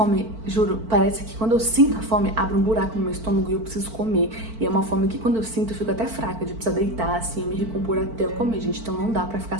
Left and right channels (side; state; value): left; late; 4.5 ms